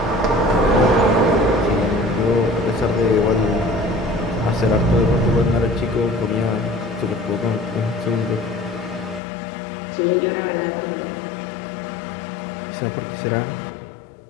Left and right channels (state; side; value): drops out; right; at 9.2 s